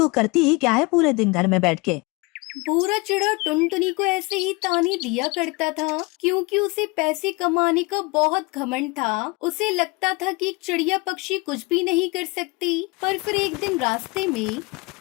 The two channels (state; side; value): quieter; right; 26.2 dB